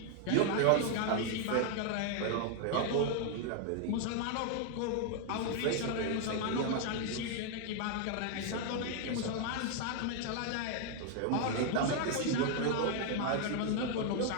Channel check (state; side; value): different; both; correlation 0.00